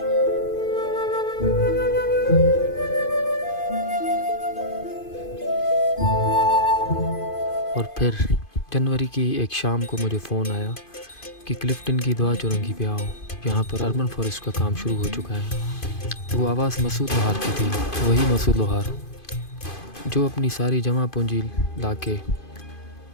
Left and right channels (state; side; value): late; right; 2.5 ms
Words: और फिर जनवरी की एक शाम को मुझे फ़ोन आया कि क्लिफ्टन की दुआ चौरंगी पे आओ, यहाँ पर अर्बन फॉरेस्ट का काम शुरू हो चुका है। वो आवाज़ मसूद लोहार की थी, वही मसूद लोहार जो अपनी सारी जमा पूंजी लाके